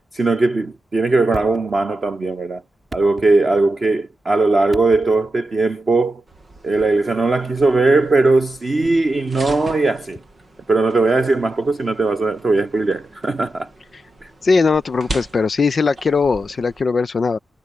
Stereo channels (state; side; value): normal; both; correlation 0.89